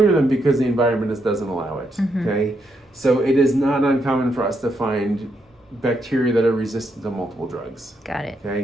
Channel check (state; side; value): normal; both; correlation 0.79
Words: them because the environment just doesn't allow it. Okay, so it is not uncommon for us to find bacteria that are resistant to multiple drugs. Got it.